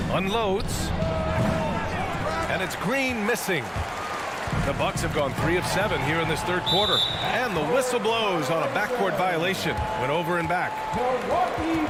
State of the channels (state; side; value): identical; both; correlation 1.00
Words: Unloads. And it's Green missing. The Bucks have gone 3 of 7 here in this third quarter. And the whistle blows on a backcourt violation. Went over and back. Milwaukee